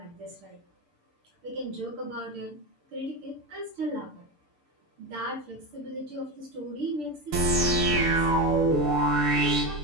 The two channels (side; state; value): left; late; 6.8 ms